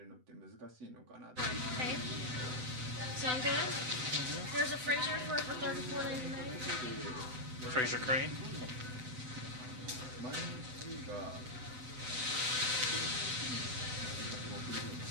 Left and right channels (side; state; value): left; late; 7.9 ms